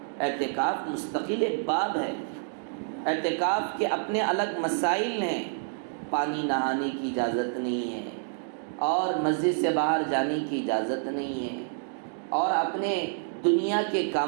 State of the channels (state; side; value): silent; left; digital silence